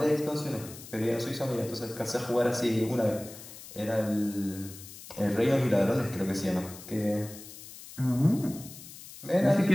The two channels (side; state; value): left; noise; hiss, 16 dB below the sound